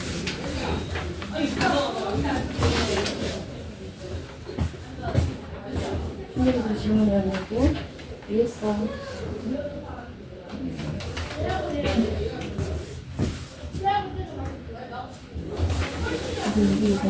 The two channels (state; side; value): identical; both; correlation 1.00